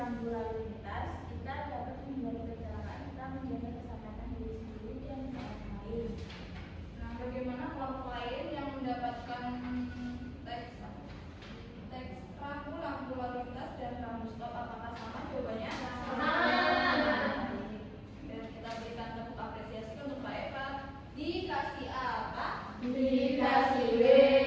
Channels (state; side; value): identical; both; correlation 1.00